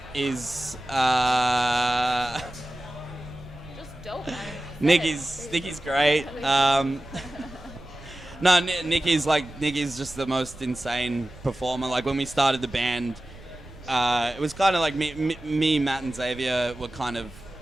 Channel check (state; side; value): noise; right; rumble, 19 dB below the sound